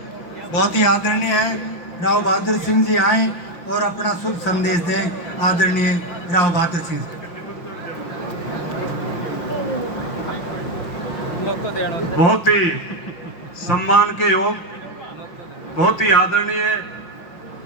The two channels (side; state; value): right; late; 5.9 ms